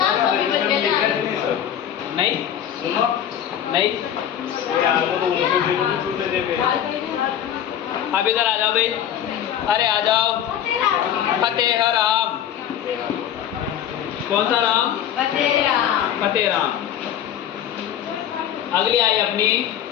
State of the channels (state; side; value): quieter; right; 10.1 dB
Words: नहीं नहीं, अब इधर आ जाओ भाई, अरे आ जाओ। फतेह राम, कौन सा राम? फतेह राम। फतेह राम। अगली आई अपनी